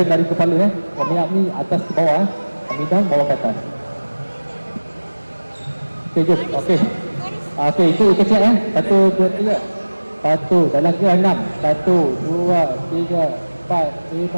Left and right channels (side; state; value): both; inverted; correlation -1.00